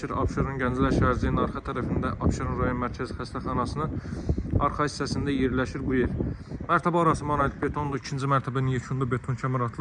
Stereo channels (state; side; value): identical; both; correlation 1.00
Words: Abşeron Gənclər şəhərciyinin arxa tərəfində Abşeron rayon Mərkəzi Xəstəxanasının arxa hissəsində yerləşir bu ev. Mərtəbə arası monolit betondur. İkinci mərtəbənin yekunda beton kəmər